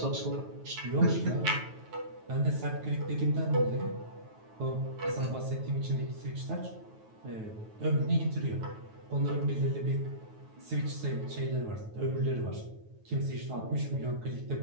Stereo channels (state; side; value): late; left; 9.3 ms